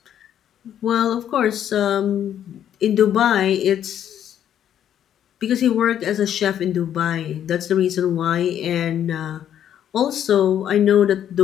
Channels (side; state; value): right; quieter; 10.1 dB